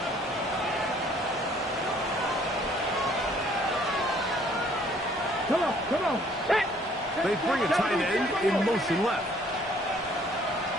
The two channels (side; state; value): both; normal; correlation 0.60